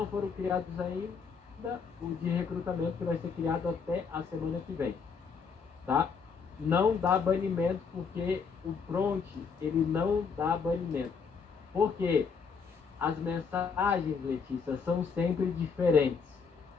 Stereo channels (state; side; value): quieter; right; 5.7 dB